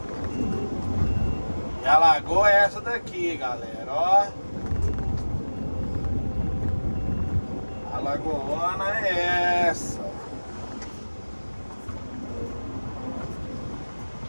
E a lagoa é essa daqui, galera, ó. A lagoona é essa.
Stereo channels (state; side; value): inverted; both; correlation -1.00